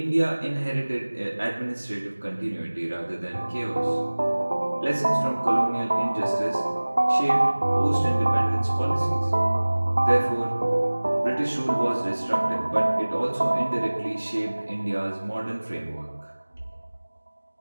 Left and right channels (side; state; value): both; inverted; correlation -1.00